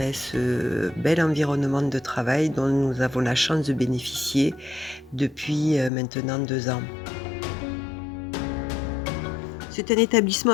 ce bel environnement de travail dont nous avons la chance de bénéficier depuis maintenant 2 ans. C'est un établissement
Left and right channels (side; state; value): right; drops out; at 5.9 s